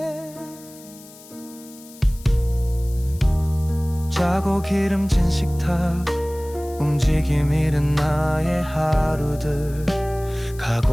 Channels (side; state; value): left; noise; hiss, 21 dB below the sound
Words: 짜고 기름진 식탁, 움직임 잃은 나의 하루들,